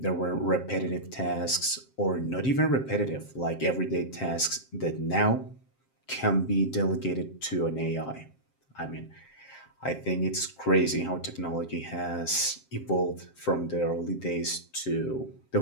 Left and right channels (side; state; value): right; late; 7.5 ms